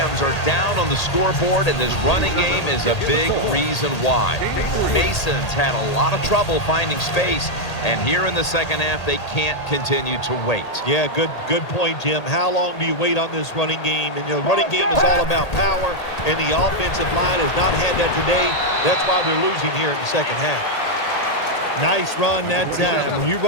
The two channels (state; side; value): late; right; 1.8 ms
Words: are down on the scoreboard, and this running game is a big reason why. Mason's had a lot of trouble finding space, and here in the second half, they can't continue to wait. Yeah, good point, Jim. How long do you wait on this running game? And the running game is all about power, and the offensive line has not had that today. That's why they're losing here in the second half. Nice run that time. When you